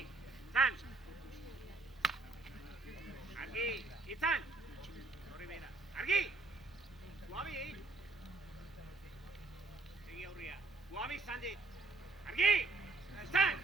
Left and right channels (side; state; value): left; quieter; 3.7 dB